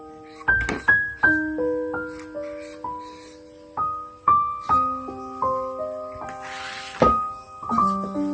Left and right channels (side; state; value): both; identical; correlation 1.00